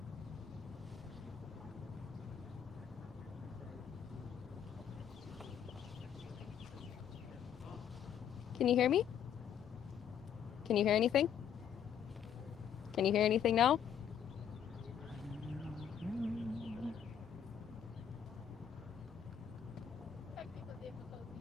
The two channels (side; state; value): right; quieter; 8.7 dB